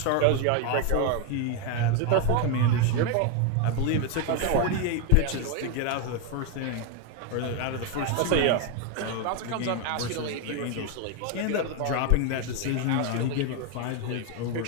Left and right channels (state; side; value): different; both; correlation 0.01